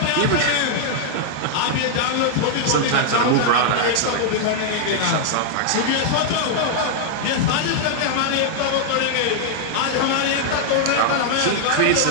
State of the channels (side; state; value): both; different; correlation -0.01